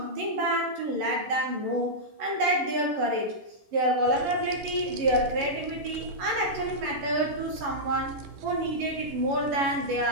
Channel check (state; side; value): late; left; 10 ms